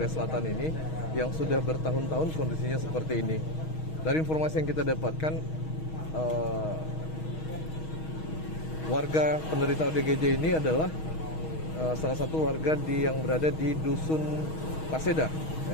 Selatan ini yang sudah bertahun-tahun kondisinya seperti ini. Dari informasi yang kita dapatkan, warga penderita ODGJ ini adalah salah satu warga yang berada di Dusun Paseda,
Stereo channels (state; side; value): late; right; 6.3 ms